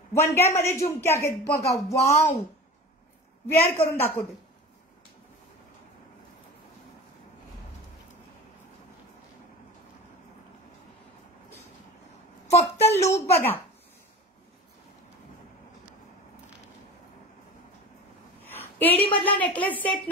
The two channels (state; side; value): normal; both; correlation 0.34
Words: वनग्यामध्ये झुमके आहेत बघा. वाव, वेअर करून दाखवते. फक्त लुक बघा. एडी मधला नेकलेस सेट